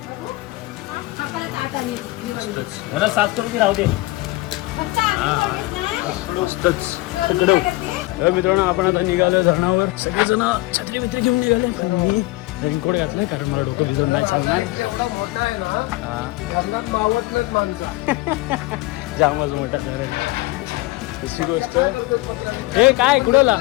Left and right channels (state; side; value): quieter; right; 20.3 dB